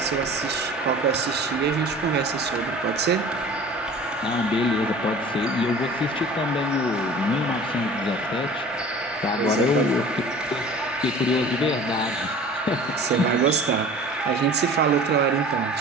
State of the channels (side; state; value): both; normal; correlation 0.43